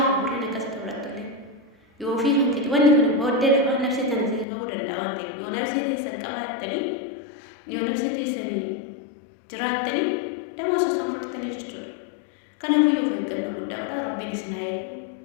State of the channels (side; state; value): right; drops out; at 4.5 s